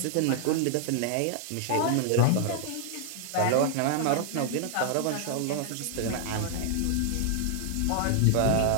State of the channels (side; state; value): both; different; correlation 0.00